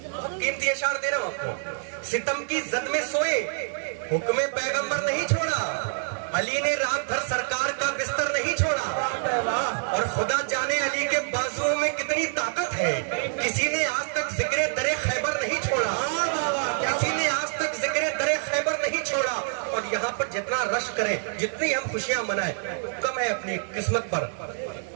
قیمتی اشعار دے رہا ہوں آپ کو۔ ستم کی زد میں سوئے، حکم پیغمبر نہیں چھوڑا، علی نے رات بھر سرکار کا بستر نہیں چھوڑا، اور خدا جانے علی کے بازوؤں میں کتنی طاقت ہے، کسی نے آج تک ذکر در خیبر نہیں چھوڑا، کسی نے آج تک ذکر در خیبر نہیں چھوڑا۔ اور یہاں پر جتنا رش کریں، جتنی ہم خوشیاں منائیں، کم ہے اپنی قسمت پر۔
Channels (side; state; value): left; silent; digital silence